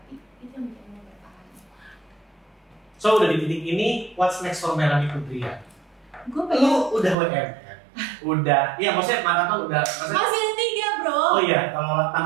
Itu yang bikin lo bertahan. So udah di titik ini, what's next for Melanie Putria? Gue pengen. Lo udah WM kan? Udah. Iya maksudnya maraton udah. Maksudnya, masih ada 3 bro. Oh iya, kalau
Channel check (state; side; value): drops out; left; at 7.2 s